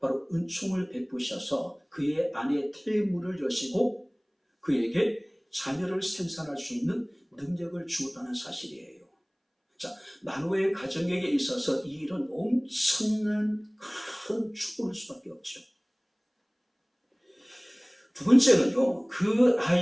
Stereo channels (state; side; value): identical; both; correlation 1.00